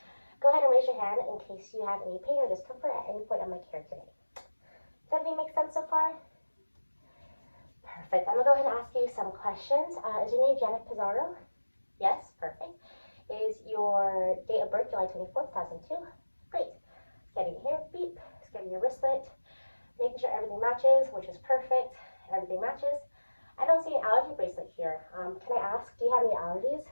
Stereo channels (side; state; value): both; inverted; correlation -1.00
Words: Go ahead and raise your hand in case you have any pain or discomfort at any point of my care today. Does everything make sense so far? Perfect. I'm going to go ahead and ask you some questions. Is your name Janet Pizarro? Yes. Perfect. Is your date of birth July 24th, 2002? Great. Scanning your hair, beep. Scanning your wristlet. Making sure everything matches, which is perfect. Everything matches. I don't see an allergy bracelet here. Can I ask, do you have any allergies?